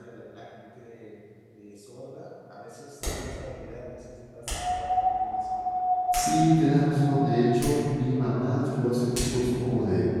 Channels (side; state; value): both; identical; correlation 1.00